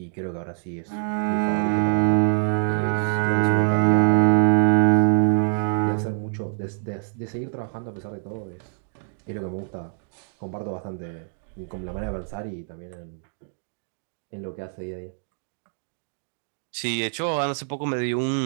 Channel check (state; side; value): silent; left; digital silence